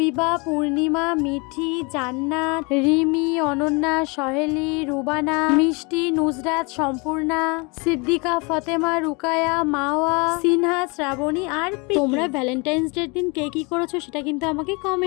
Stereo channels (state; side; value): quieter; right; 29.6 dB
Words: পূর্ণিমা, মিঠি, জান্নাত, রিমি, অনন্যা, সহেলি, রুবানা, মিষ্টি, নুসরাত, সম্পূর্ণা, সিদ্দিকা, ফতেমা, রুকায়া, মাওয়া, সিনহা, শ্রাবণী আর প্রীতি। তোমরা ভ্যালেন্টাইন্স ডের দিন কে কি করেছো সেটা কিন্তু আমাকে